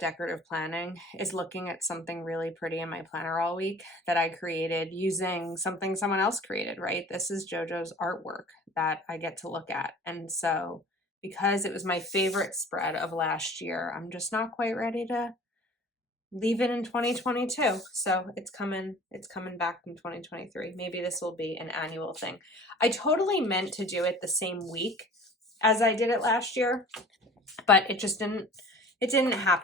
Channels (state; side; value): normal; both; correlation 0.45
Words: planning is looking at something really pretty in my planner all week that I created using something someone else created, right? This is JoJo's artwork that I get to look at. And so because it was my favorite spread of last year, I'm just not quite ready to leave it in 2022. So it's coming back in 2023. Maybe this will be an annual thing. I totally meant to do it the same week as I did it last year, but it didn't